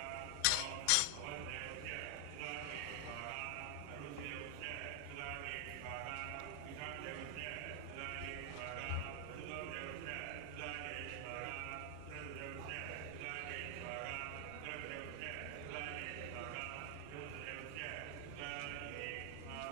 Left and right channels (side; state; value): both; different; correlation 0.00